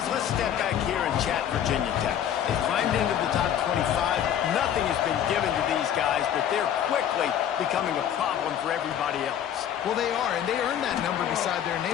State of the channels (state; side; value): quieter; right; 9.9 dB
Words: let's step back here and chat Virginia Tech. They climbed into the top 25. Nothing has been given to these guys, but they're quickly becoming a problem for everybody else. Well, they are, and they earned that number beside their name.